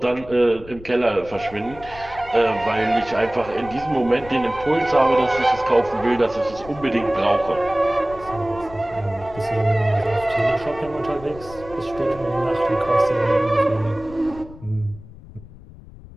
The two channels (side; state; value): left; noise; rumble, 18 dB below the sound